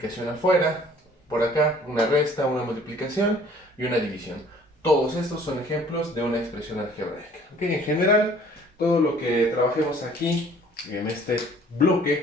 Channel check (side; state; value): both; normal; correlation 0.54